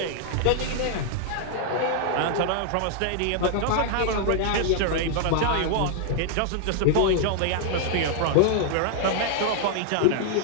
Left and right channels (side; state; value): both; different; correlation -0.01